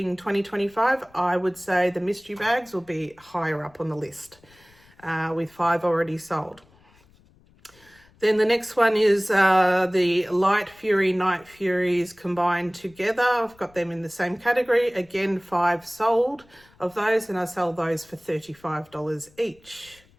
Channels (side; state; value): left; noise; rumble, 30 dB below the sound